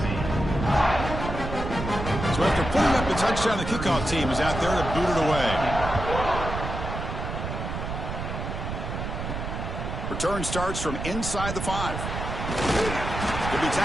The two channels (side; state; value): right; noise; rumble, 5 dB below the sound